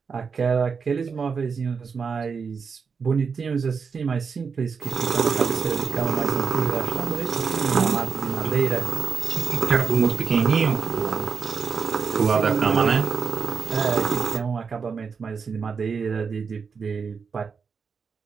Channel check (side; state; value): left; quieter; 5.7 dB